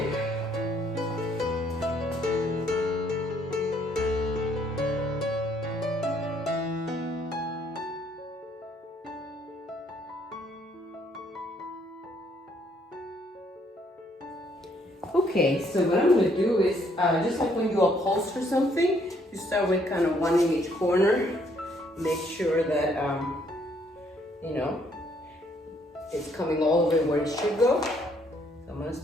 Okay, so what I'm going to do is, just like when you upholster something, you start with kind of one in each corner. Make sure that, you know, it's coming all the way where it should go. So I'm going to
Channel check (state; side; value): normal; both; correlation 0.67